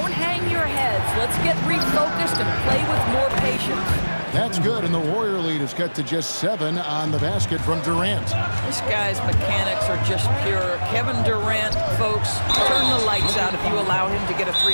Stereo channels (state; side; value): inverted; both; correlation -1.00